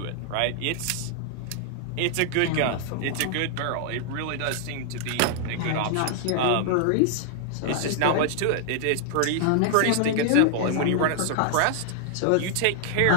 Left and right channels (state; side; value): different; both; correlation 0.00